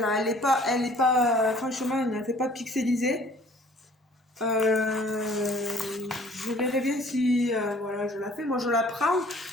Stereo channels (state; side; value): normal; both; correlation 0.54